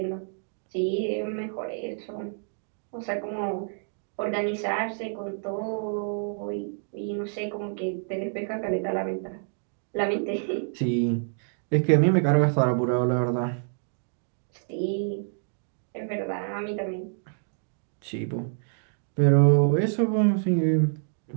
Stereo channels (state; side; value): silent; left; digital silence